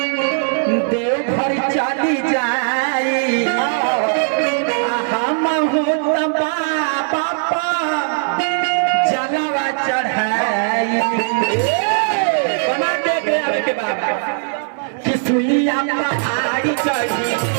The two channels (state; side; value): silent; left; digital silence